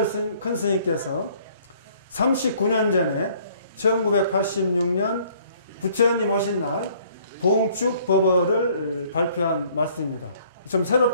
큰 스님께서 39년 전에 1986년 부처님 오신 날 봉축 법어를 발표한 말씀입니다. 좀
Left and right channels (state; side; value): inverted; both; correlation -0.59